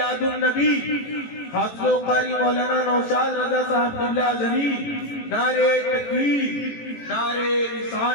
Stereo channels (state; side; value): late; right; 18 ms